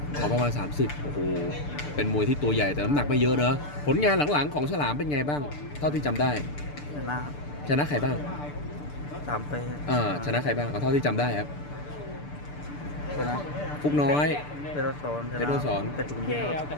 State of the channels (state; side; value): late; right; 6.8 ms